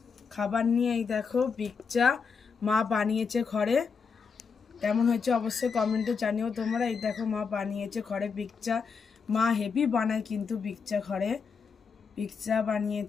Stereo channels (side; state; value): right; quieter; 5.6 dB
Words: খাবার নিয়ে। এই দেখো বিকচা মা বানিয়েছে ঘরে। কেমন হয়েছে অবশ্যই কমেন্টে জানিও তোমরা। এই দেখো মা বানিয়েছে ঘরে বিকচা। মা হেভি বানায় কিন্তু বিকচা ঘরে। বিকচা